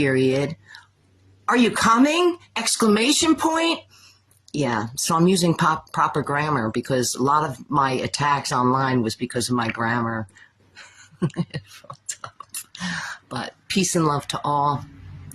Are you coming? Exclamation point. Yeah, so I'm using proper grammar because a lot of my attacks online was because of my grammar. But peace and love to all.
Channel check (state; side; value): identical; both; correlation 1.00